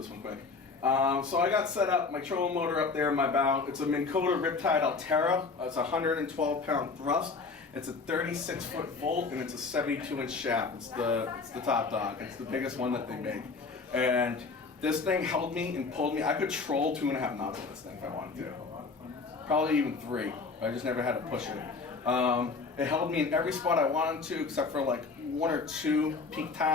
one quick. So I got set up, my trolling motor up there in my bow. It's a Minn Kota Riptide Altera. It's a 112-pound thrust. It's a 36-foot volt, and it's a 72-inch shaft. It's the top dog. It's the biggest one that they make. And this thing held me and pulled me. I could troll 2.5 knots with this thing if I wanted to. Probably even 3. I just never had to push it. It held me in every spot I wanted to, except for like 1 or 2 peak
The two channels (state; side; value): quieter; right; 4.4 dB